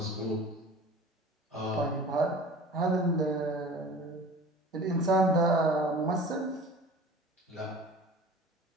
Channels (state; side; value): normal; both; correlation 0.41